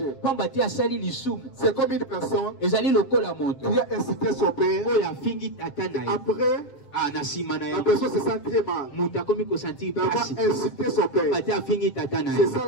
C'est comme une personne qui a incité son père. Après, la personne se sent très mal d'avoir incité son père. C'est ça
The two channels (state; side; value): late; right; 7.6 ms